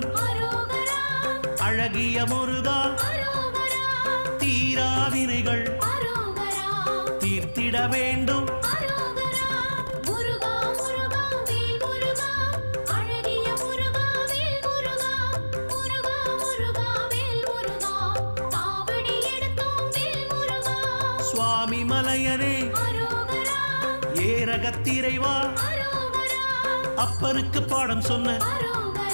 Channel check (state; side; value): inverted; both; correlation -1.00